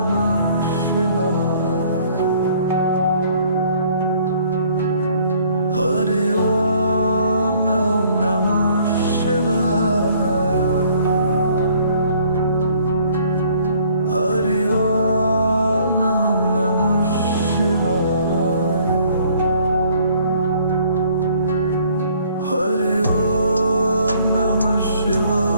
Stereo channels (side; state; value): both; inverted; correlation -0.59